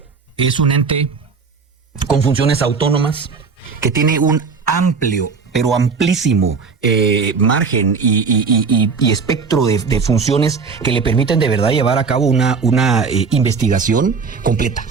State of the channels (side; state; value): left; quieter; 5.1 dB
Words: es un ente con funciones autónomas que tiene un amplio, pero amplísimo margen y espectro de funciones que le permiten de verdad llevar a cabo una investigación completa.